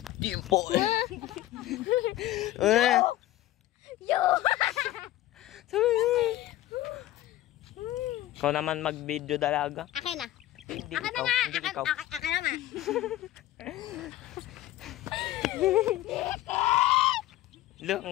Dimple. Yo! Ikaw naman mag-video dalaga. Akin na. Hindi Akin na ikaw. nga. Hindi ikaw. Akin na nga. Look,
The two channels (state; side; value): quieter; right; 14.9 dB